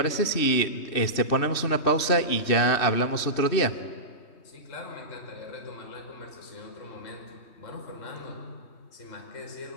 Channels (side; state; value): right; late; 2.7 ms